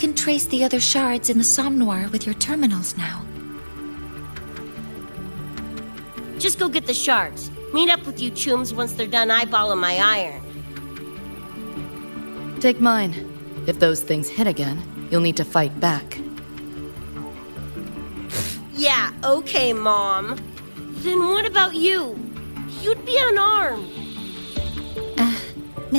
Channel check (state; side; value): inverted; both; correlation -1.00